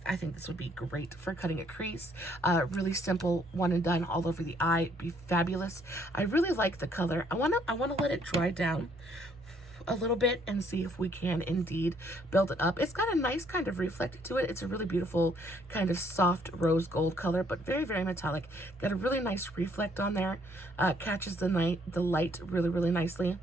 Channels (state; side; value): normal; both; correlation 0.66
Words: think this would be great for cutting a crease. Really simple, one and done all over the eye, be fabulous. I really like the color. I wanna let it dry down a little bit and see if we can indeed build it up. It's got a nice kind of reflect to it. It's a really beautiful kind of soft rose gold color, but very metallic. Got a really nice reflect on there. Catches the light really nicely.